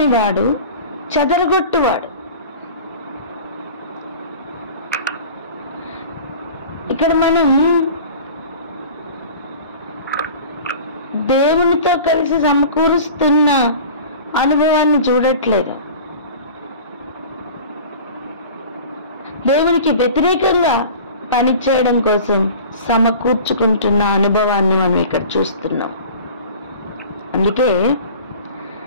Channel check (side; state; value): both; inverted; correlation -0.40